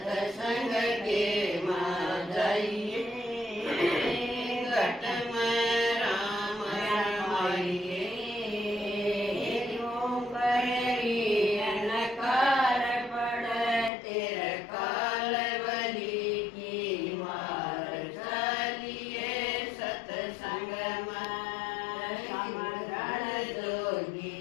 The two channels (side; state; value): right; drops out; at 13.9 s